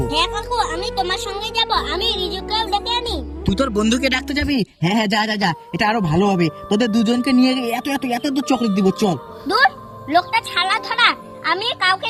হ্যাঁ কাকু, আমি তোমার সঙ্গে যাব। আমি রিজুকেও ডেকে আনি। তুই তোর বন্ধুকে ডাকতে যাবি? হ্যাঁ হ্যাঁ, যা যা যা, এটা আরো ভালো হবে। তোদের দুজনকে নিয়ে গিয়ে এত এত এত এত চকলেট দিব, চল। দূর, লোকটা ছালা ধরা, আমি কাউকে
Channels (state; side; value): identical; both; correlation 1.00